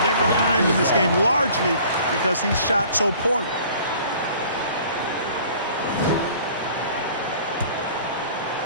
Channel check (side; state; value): both; inverted; correlation -0.50